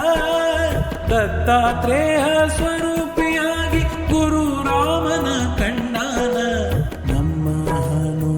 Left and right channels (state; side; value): identical; both; correlation 1.00